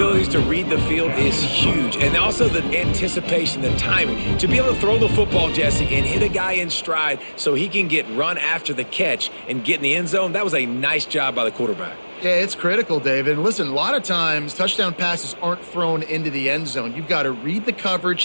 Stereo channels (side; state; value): both; inverted; correlation -1.00